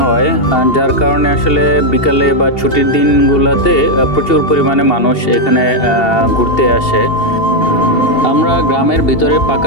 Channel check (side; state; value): right; late; 2.8 ms